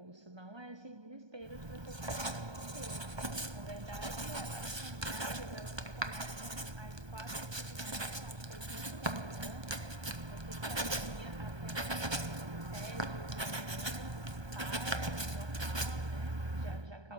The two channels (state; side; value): late; left; 1.2 ms